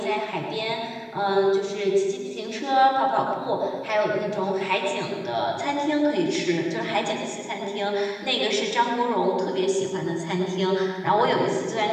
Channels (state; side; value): identical; both; correlation 1.00